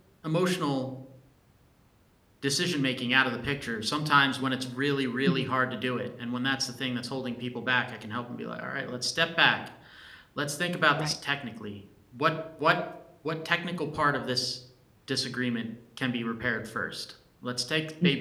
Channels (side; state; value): both; identical; correlation 1.00